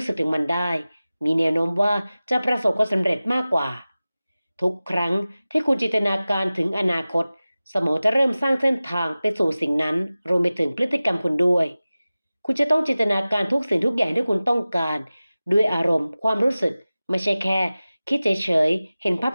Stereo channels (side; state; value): both; inverted; correlation -0.97